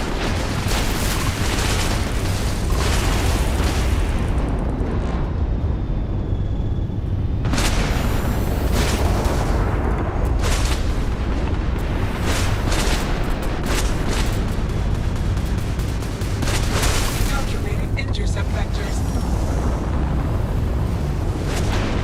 Calculating intercept vectors.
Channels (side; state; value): both; identical; correlation 1.00